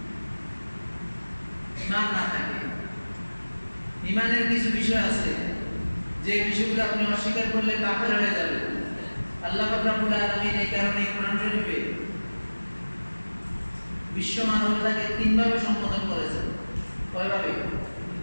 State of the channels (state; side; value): inverted; both; correlation -1.00